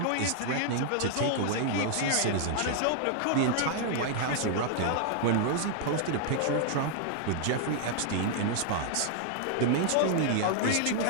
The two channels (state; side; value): different; both; correlation -0.01